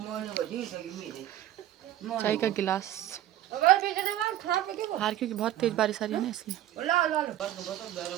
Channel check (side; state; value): left; quieter; 12.9 dB